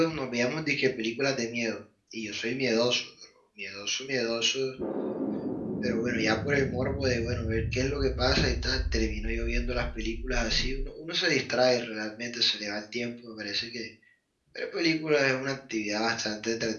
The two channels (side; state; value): both; identical; correlation 1.00